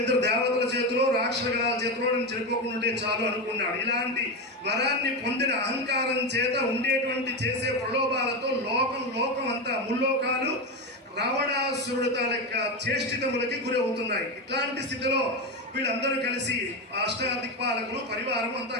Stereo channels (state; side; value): normal; both; correlation 0.15